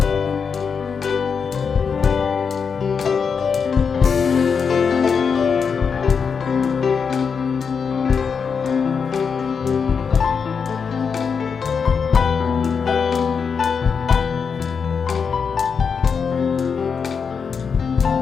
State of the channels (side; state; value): right; quieter; 6.0 dB